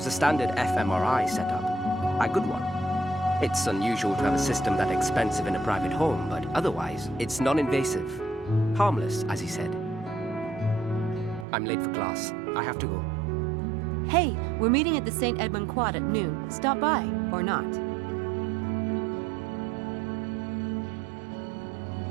a standard fMRI setup. A good one. It's unusual to have a system that expensive in a private home, but otherwise, it's non-invasive. Harmless, as he said. I'm late for class. I have to go. Hey, we're meeting at the St. Edmund Quad at noon. Stop by, or not.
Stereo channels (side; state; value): left; drops out; at 11.5 s